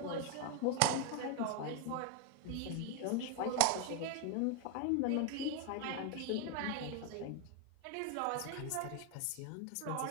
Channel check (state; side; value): different; both; correlation 0.01